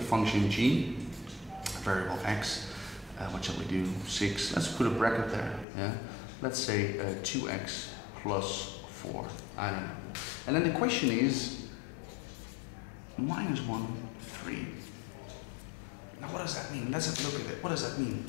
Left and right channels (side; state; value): right; drops out; at 5.7 s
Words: function g, variable x. What shall we do? 6. Let's put a bracket there. Yeah. Let's say 2x plus 4. I don't know. And then the question is minus 1, 3. Now what does that mean? Let's have a look at it. What does that mean?